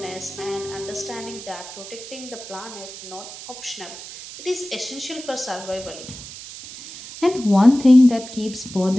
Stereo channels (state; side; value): noise; right; hiss, 13 dB below the sound